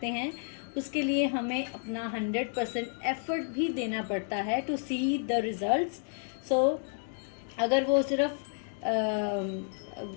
हैं। उसके लिए हमें अपना 100% एफर्ट भी देना पड़ता है टू सी द रिजल्ट्स। सो अगर वो सिर्फ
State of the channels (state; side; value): silent; right; 57 dB below the other